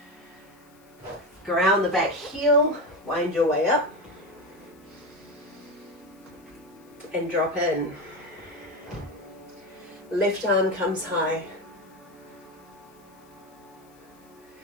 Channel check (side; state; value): left; noise; hiss, 30 dB below the sound